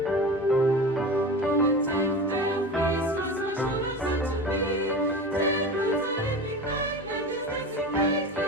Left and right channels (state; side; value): normal; both; correlation 0.31